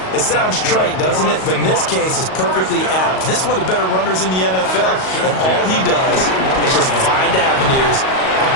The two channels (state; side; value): late; right; 38 ms